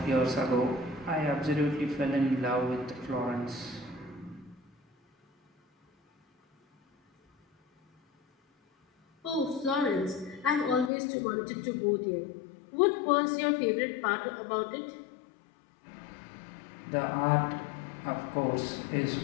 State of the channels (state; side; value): drops out; right; at 10.9 s